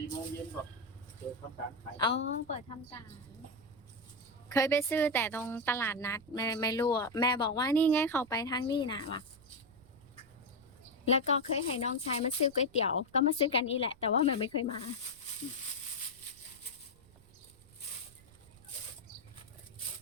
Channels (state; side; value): noise; right; rumble, 25 dB below the sound